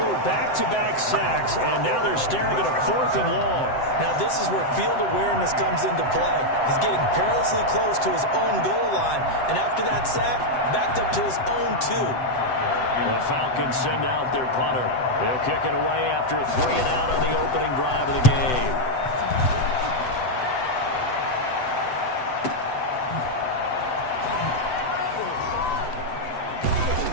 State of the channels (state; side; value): late; right; 7.8 ms